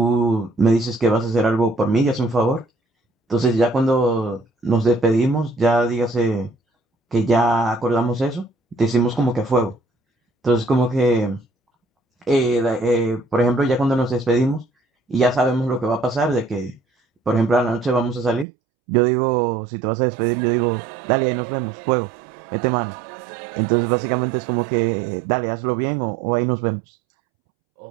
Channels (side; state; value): left; drops out; at 18.4 s